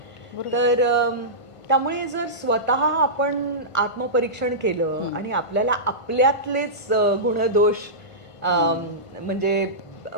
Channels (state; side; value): late; right; 1.5 ms